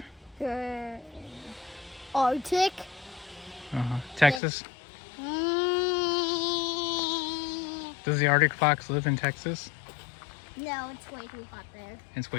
Arctic. Uh-huh. Texas? Mm, Does the Arctic fox live in Texas? no, it's way too hot there. It's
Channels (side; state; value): right; drops out; at 4.4 s